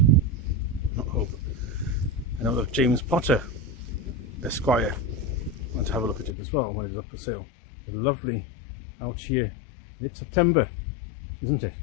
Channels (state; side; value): drops out; right; at 6.4 s